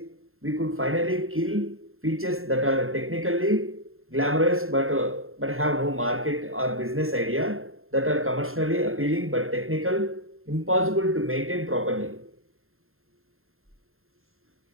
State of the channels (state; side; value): late; left; 0.61 ms